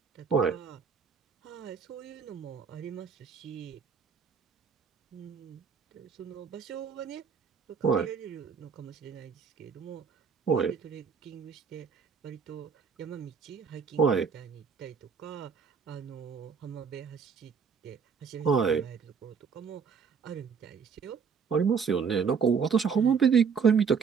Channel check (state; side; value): quieter; left; 6.3 dB